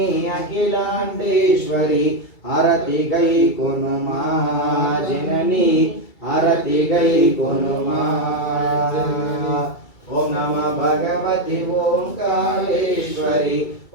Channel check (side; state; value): right; late; 2.3 ms